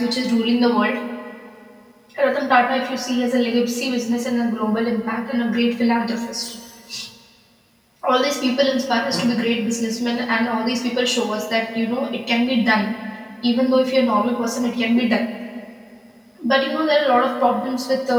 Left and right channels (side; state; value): both; identical; correlation 1.00